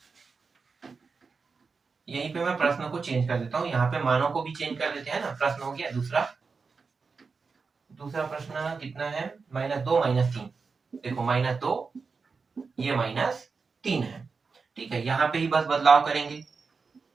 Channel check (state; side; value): quieter; left; 4.8 dB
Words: यहीं पे मैं प्रश्न को चेंज कर देता हूँ, यहाँ पे मानों को भी चेंज कर देते हैं ना। प्रश्न हो गया दूसरा प्रश्न कितना है? -2 -3। देखो -2, ये -3 है। ठीक है, यहाँ पे ही बस बदलाव करेंगे,